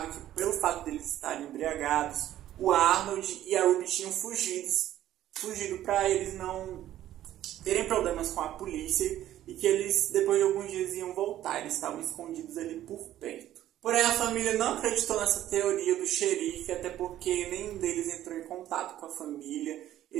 que pelo fato deles estarem embriagados, o Arnold e a Ruby tinham fugido para eles não terem problemas com a polícia e que eles, depois de alguns dias, iam voltar. Eles estavam escondidos ali por perto. Porém, a família não acreditou nessa teoria do xerife, até porque nenhum deles entrou em contato com a família.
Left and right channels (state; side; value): quieter; left; 12.8 dB